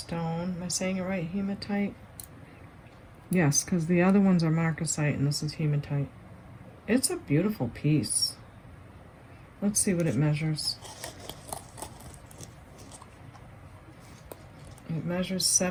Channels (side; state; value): both; identical; correlation 1.00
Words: Am I saying it right? Hematite? Yes, because the other ones are marcasite and this is hematite. It's a beautiful piece. Let's see what it measures. It measures